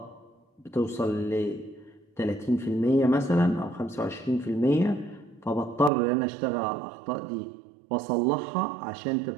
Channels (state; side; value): drops out; left; at 5.9 s